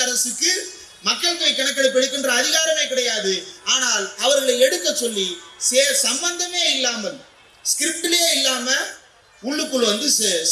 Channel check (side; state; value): both; identical; correlation 1.00